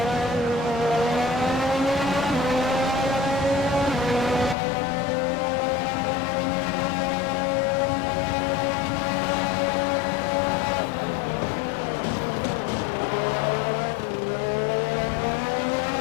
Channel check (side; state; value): right; drops out; at 4.5 s